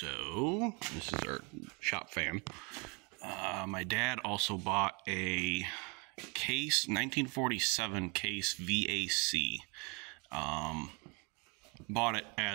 this is our shop fan. My dad also bought a Case 1947 Case VAC. Bought it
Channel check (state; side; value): quieter; left; 31.5 dB